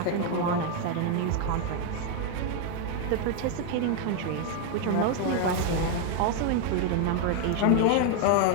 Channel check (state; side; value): different; both; correlation 0.01